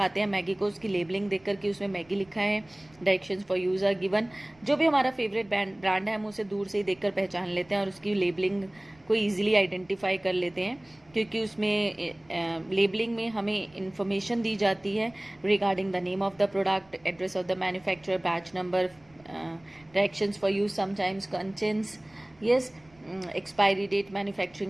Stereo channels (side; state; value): right; noise; rumble, 29 dB below the sound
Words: हैं मैगी को उसकी लेबलिंग देखकर कि उसमें मैगी लिखा है, directions for use are given. जो भी हमारा फेवरेट ब्रांड है हम उसे दूर से ही देखकर पहचान लेते हैं और उसकी लेबलिंग को ईजिली आइडेंटिफाई कर लेते हैं क्योंकि उसमें लेबलिंग में हमें इंफॉर्मेशन दी जाती है regarding the name of the product, address of the manufacturer, batch number, directions for use, sometimes contents, yes, expiry date,